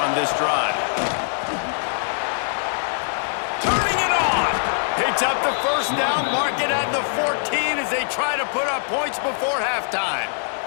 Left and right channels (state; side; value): silent; right; digital silence